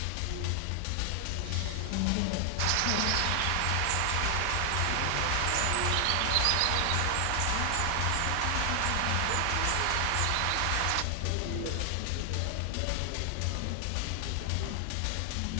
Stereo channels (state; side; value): different; both; correlation 0.00